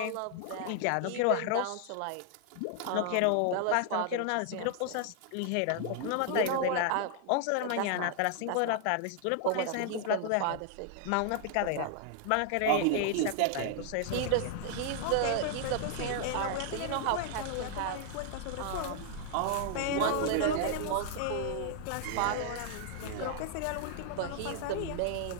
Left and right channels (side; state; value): both; different; correlation 0.00